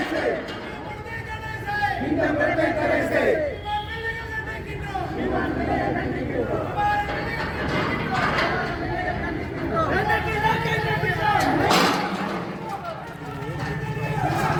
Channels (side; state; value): both; identical; correlation 1.00